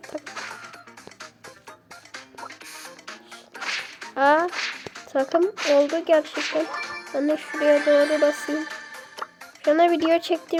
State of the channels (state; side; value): identical; both; correlation 1.00